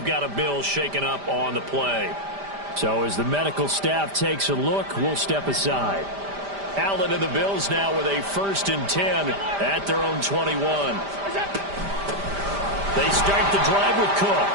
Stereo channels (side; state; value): left; late; 5.0 ms